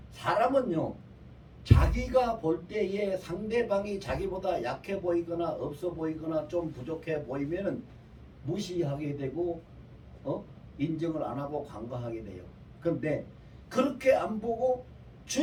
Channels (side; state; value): both; identical; correlation 1.00